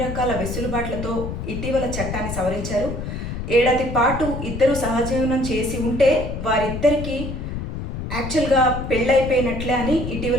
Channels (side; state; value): left; noise; rumble, 6 dB below the sound